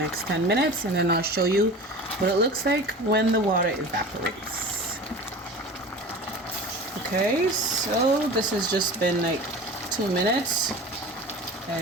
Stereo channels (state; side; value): normal; both; correlation 0.36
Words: 10 minutes, and then I'll show you what it looks like when the water evaporates. Okay, so this has just been like 2 minutes,